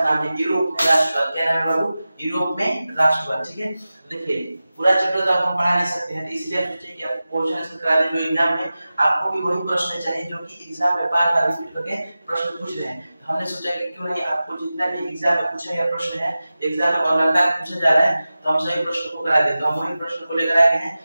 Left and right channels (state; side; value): inverted; both; correlation -0.95